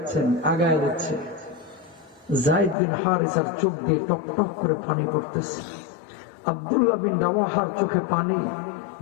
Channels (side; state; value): right; drops out; at 2.8 s